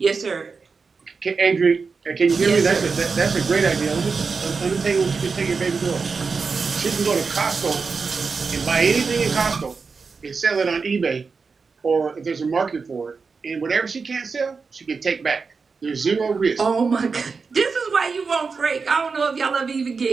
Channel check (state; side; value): quieter; left; 4.9 dB